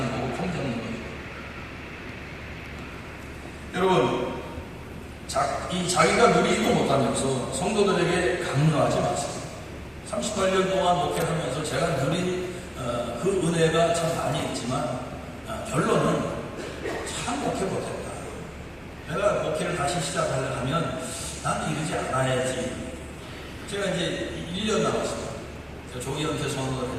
거고 통제하는 거죠. 여러분, 자기가 누리지도 못하면서 성도들에게 강요하지 마세요. 38년 동안 목회를 하면서 제가 누린 그 은혜가 참 많이 있지만 결론은 참 목회 못했다. 내가 목회를 다시 시작하려 하면 난 이러지 않아야지. 제가 이제 1년 남았어요. 제가 조기 은퇴 선언을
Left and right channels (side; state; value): both; identical; correlation 1.00